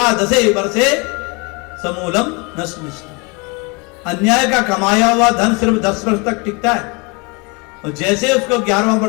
वर्षे समूलम नष्ट। अन्याय का कमाया हुआ धन सिर्फ 10 वर्ष तक टिकता है, और जैसे उसको 11वां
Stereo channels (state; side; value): quieter; right; 29.7 dB